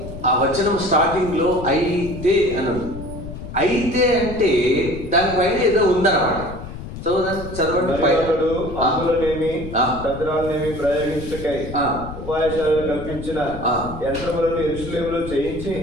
ఆ వచనం స్టార్టింగ్ లో అయితే అన్నాడు. అయితే అంటే దానిపైన ఏదో ఉందన్నమాట. చదవండి. మరియు అతడు ఆ. అంబులనేమి ఆ. దద్రాలనేమి ప్రయోగించుటకై ఆ. ఉపాయశాలను కల్పించిన ఆ. యంత్రములను యెరూషలేములో చేయించి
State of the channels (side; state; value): left; noise; rumble, 10 dB below the sound